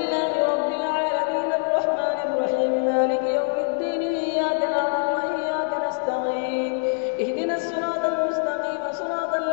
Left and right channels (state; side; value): silent; right; digital silence